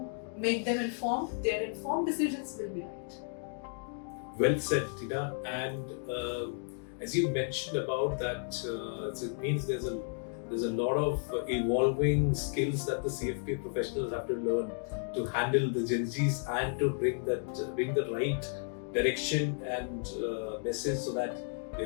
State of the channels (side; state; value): right; silent; 56 dB below the other